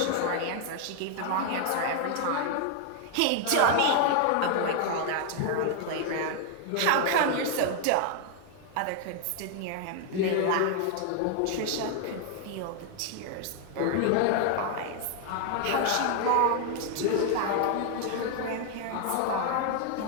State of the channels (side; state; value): both; different; correlation 0.00